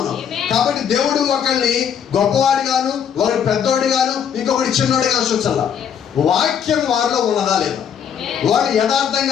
కాబట్టి దేవుడు ఒకరిని గొప్పవాడి గాను, ఒకరి పెద్దోడి గాను, ఇంకొకటి చిన్నోడి గాను చూచాల. వాక్యం వారిలో ఉన్నదా లేదా, వాడు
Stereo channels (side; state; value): right; quieter; 8.1 dB